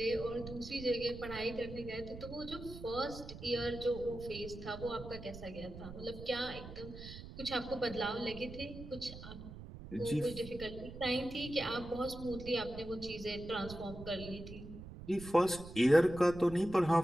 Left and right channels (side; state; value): right; noise; rumble, 12 dB below the sound